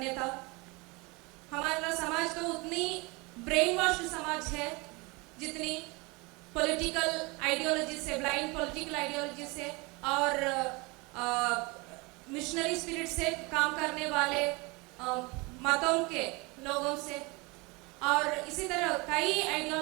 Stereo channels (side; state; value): left; quieter; 26.6 dB